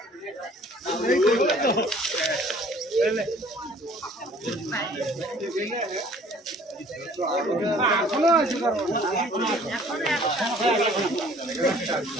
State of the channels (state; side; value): normal; both; correlation 0.54